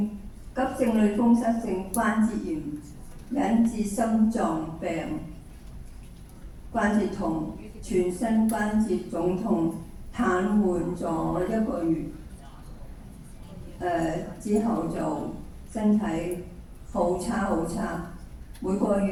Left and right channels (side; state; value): both; identical; correlation 1.00